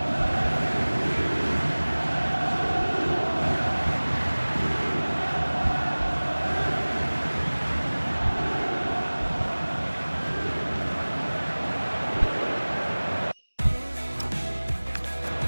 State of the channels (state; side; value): inverted; both; correlation -1.00